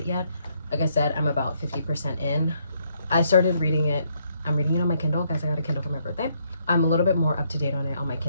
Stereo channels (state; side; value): inverted; both; correlation -0.72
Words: yet. Like I said, I'm about 50% in. I started reading it. I'm reading it on my Kindle. Guys, I got a Kindle for my birthday. I'm a little bit more up to date on it on my